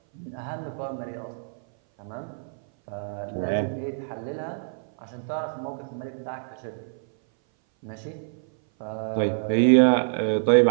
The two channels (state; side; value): silent; left; 58 dB below the other